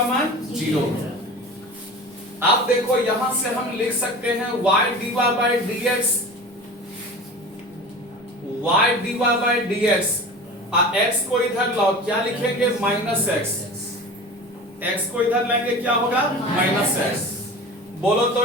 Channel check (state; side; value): normal; both; correlation 0.35